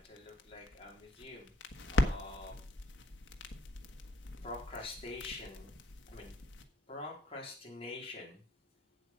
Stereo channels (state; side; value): normal; both; correlation 0.66